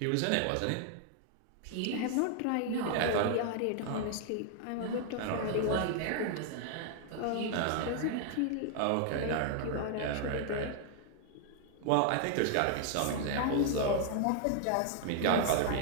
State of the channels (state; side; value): different; both; correlation 0.00